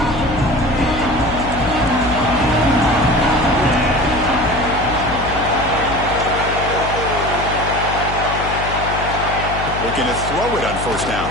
Looking to throw it on 1st down.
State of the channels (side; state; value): left; noise; hum, 8 dB below the sound